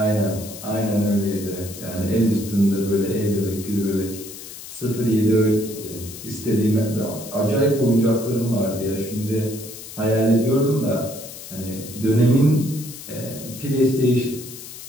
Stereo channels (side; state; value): left; noise; hiss, 13 dB below the sound